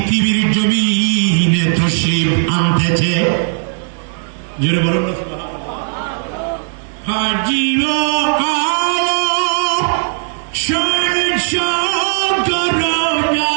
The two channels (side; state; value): left; silent; digital silence